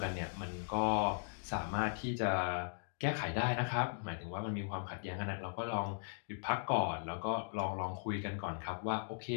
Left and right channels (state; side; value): silent; right; digital silence